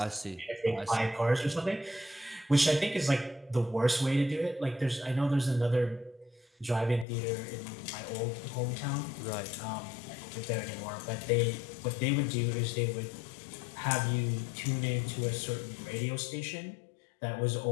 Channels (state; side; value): drops out; right; at 7.1 s